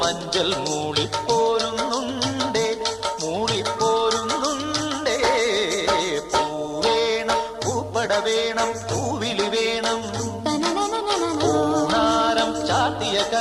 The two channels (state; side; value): identical; both; correlation 1.00